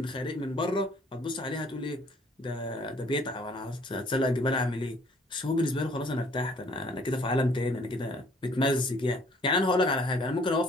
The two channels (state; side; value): normal; both; correlation 0.59